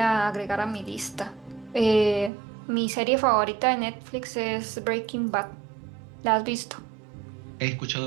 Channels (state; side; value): drops out; left; at 2.3 s